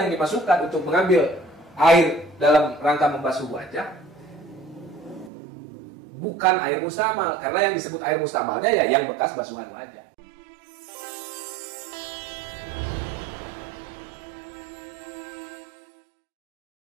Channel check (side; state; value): left; drops out; at 5.3 s